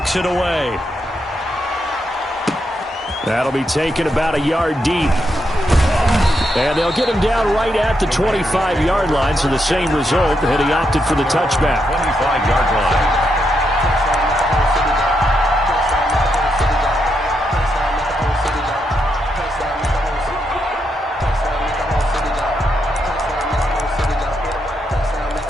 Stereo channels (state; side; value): normal; both; correlation 0.81